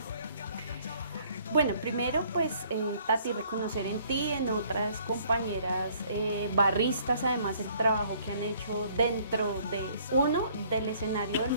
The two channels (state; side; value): inverted; both; correlation -0.60